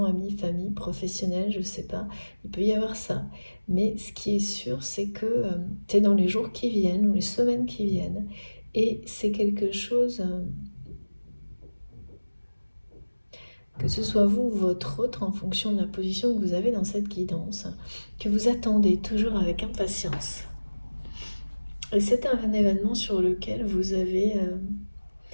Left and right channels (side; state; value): both; inverted; correlation -1.00